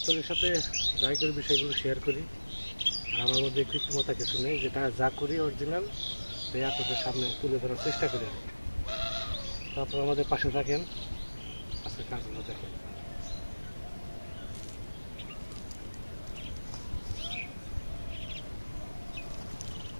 সাথে যাই করি বিষয়গুলো শেয়ার করি। আর আমার মধ্যে কৃত্রিমতা কিছু নেই, যেটা যা করি অরিজিনাল তাই আপনাদের সামনে তুলে ধরার চেষ্টা করি। তো আপনারা আমাদের পাশে থাকেন, আজকে কাজগুলো দেখেন।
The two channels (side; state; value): both; inverted; correlation -1.00